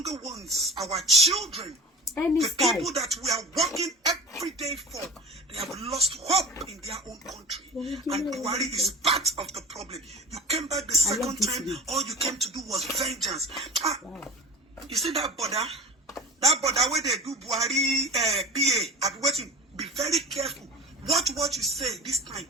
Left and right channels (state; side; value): normal; both; correlation 0.34